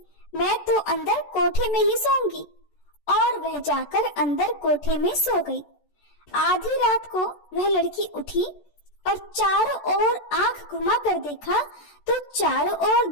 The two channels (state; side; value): late; right; 14 ms